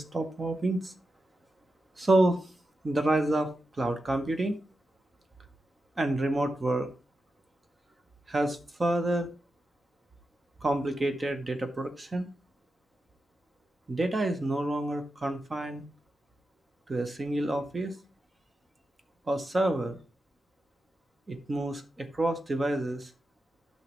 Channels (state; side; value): normal; both; correlation 0.89